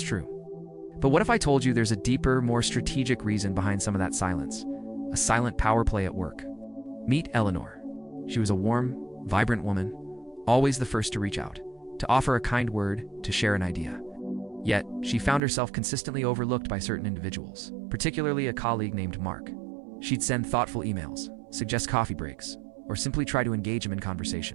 But what if I told you there's a deeper, more strategic reason behind some of that silence? A silent power play at work. Meet Eleanor. She was a warm, vibrant woman, always the first to reach out, to offer a kind word, to share an idea. Yet, she found herself consistently overlooked by certain individuals, particularly a colleague named Mark. She'd send thoughtful emails, suggest coffee breaks, or simply try to engage him in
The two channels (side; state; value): left; drops out; at 15.4 s